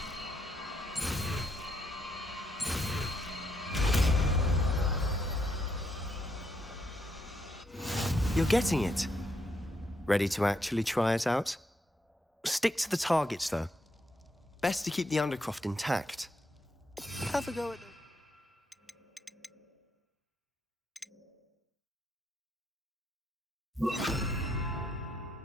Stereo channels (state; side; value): normal; both; correlation 0.78